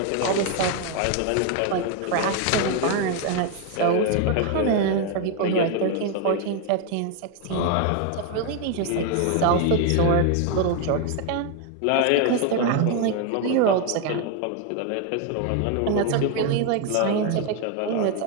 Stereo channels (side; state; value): both; different; correlation 0.01